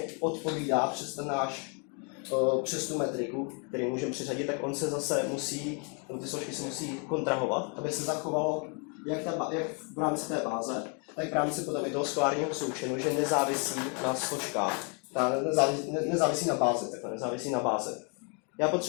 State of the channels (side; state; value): right; quieter; 37.1 dB